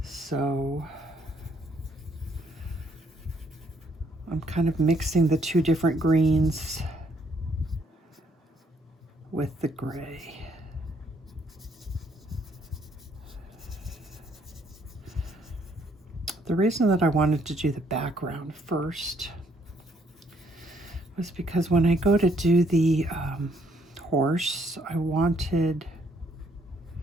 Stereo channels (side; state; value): both; normal; correlation 0.68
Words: So I'm kind of mixing the two different greens with the gray. The reason that I wanted to do the background first was because when I go to do the horse, I wanted